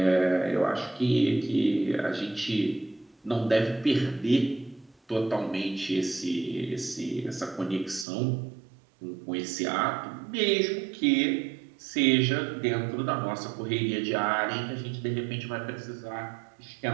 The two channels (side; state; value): left; drops out; at 8.1 s